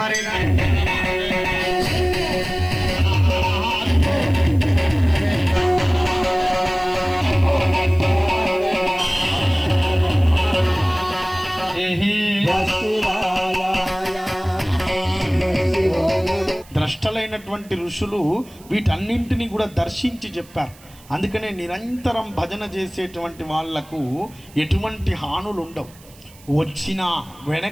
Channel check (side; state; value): right; noise; hiss, 25 dB below the sound